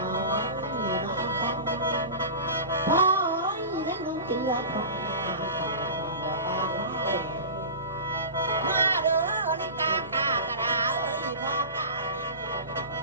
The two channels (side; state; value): both; inverted; correlation -0.31